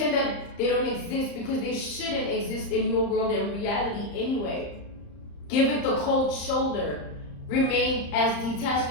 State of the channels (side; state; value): right; late; 34 ms